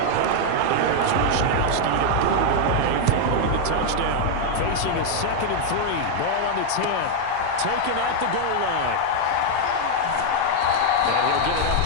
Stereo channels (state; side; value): different; both; correlation 0.00